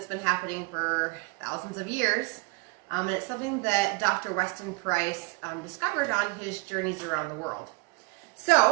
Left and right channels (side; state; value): left; quieter; 28.0 dB